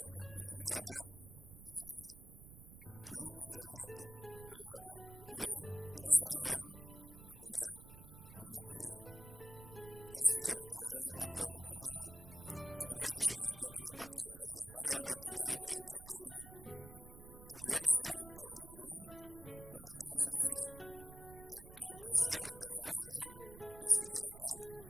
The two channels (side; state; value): right; noise; rumble, 15 dB below the sound